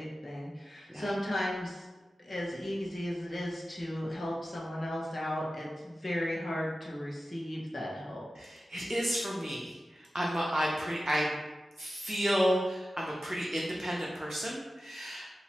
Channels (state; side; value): normal; both; correlation 0.94